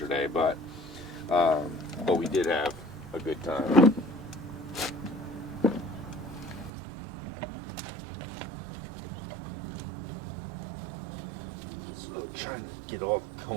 but we did have a good time. So trying to get all the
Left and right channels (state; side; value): drops out; left; at 6.7 s